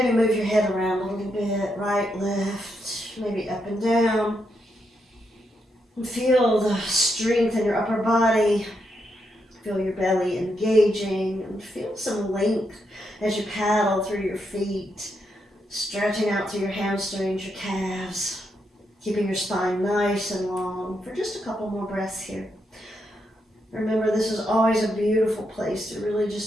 move your head around a little bit, right, left, maybe up and down. And feel the strength in your upper body. Feel your belly engaging and feel some length as you paddle through your feet, stretching out through your hamstrings, your calves, keeping your spine nice and long for just a couple more breaths here. Remember, this is always a beautiful place to really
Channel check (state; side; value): normal; both; correlation 0.81